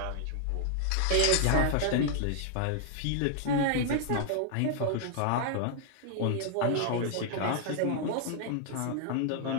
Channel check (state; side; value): different; both; correlation 0.00